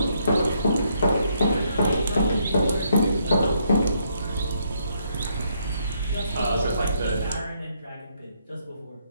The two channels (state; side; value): inverted; both; correlation -0.73